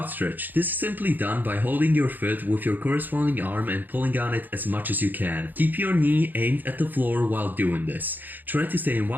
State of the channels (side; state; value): left; late; 0.087 ms